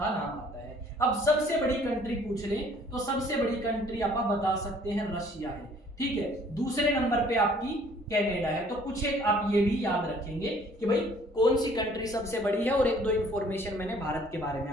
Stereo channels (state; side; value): normal; both; correlation 0.57